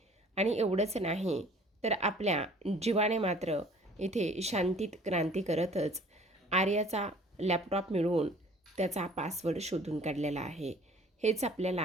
आणि एवढंच नाही तर आपल्या जीवाने मात्र इथे शांतीत क्रांती करतच आर्याचा लॅपटॉप मिळवून त्याचा पासवर्ड शोधून काढलेला आहे. हेच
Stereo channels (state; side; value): normal; both; correlation 0.52